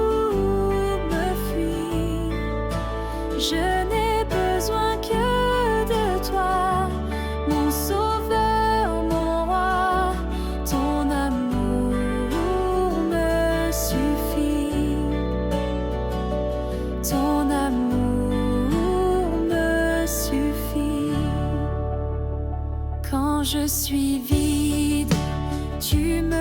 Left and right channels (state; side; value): identical; both; correlation 1.00